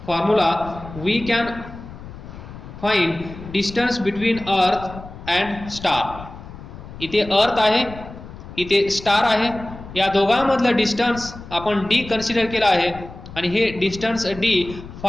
formula we can find distance between earth and star. इथे अर्थ आहे, इथे star आहे, या दोघांमधलं डिस्टन्स आपण डी कन्सिडर केलं आहे आणि हे डिस्टन्स डी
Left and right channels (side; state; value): left; noise; rumble, 14 dB below the sound